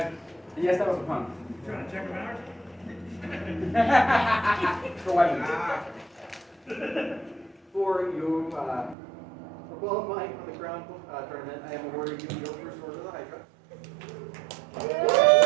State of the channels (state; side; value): drops out; left; at 9.0 s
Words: Yes, that was a pun. Trying to check them out. For weapons. For you, for qualifying for the crown tournament, I have awarded you your first order of the Hydra.